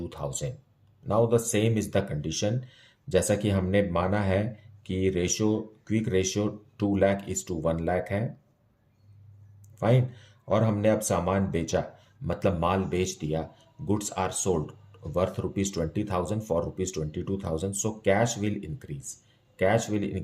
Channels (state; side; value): identical; both; correlation 1.00